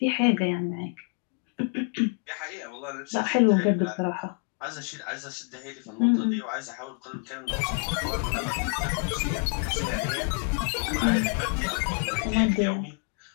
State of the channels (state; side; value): quieter; right; 38.9 dB